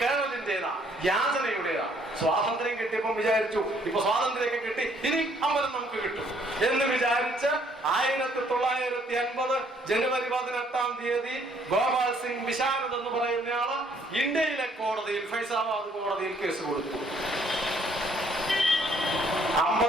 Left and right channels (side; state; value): both; normal; correlation 0.65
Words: കേരളത്തിന്റേതാ, യാചനയുടേതാ. സ്വാതന്ത്ര്യം കിട്ടിയപ്പം വിചാരിച്ചു ഇപ്പൊ സ്വാതന്ത്ര്യമൊക്കെ കിട്ടി, ഇനി അമ്പലം നമുക്ക് കിട്ടും എന്ന് വിചാരിച്ച് 1950 ജനുവരി 18-ാം തീയതി ഗോപാൽ സിംഗ് വിശാരദ് എന്ന് പറയുന്നയാള് ഇന്ത്യയിലെ കോടതിയിൽ, ഫൈസാബാദ് കോടതിയിൽ കേസ് കൊടുത്തു.